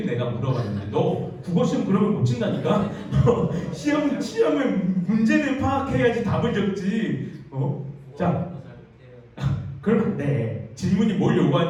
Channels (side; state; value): both; identical; correlation 1.00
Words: 내가 물어봤는데 너 국어시험 그러면 못 친다니까? 시험에 문제를 파악해야지 답을 적지. 자, 그러면 안 돼. 질문이 뭘